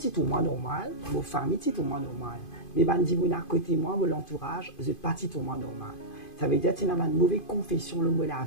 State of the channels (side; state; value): right; late; 2.5 ms